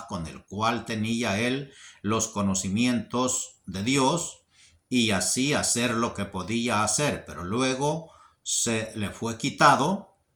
con el cual tenía él los conocimientos de Dios y así hacer lo que podía hacer, pero luego se le fue quitado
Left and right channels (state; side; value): identical; both; correlation 1.00